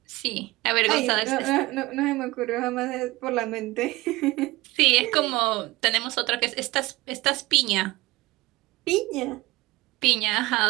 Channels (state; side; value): quieter; left; 20.4 dB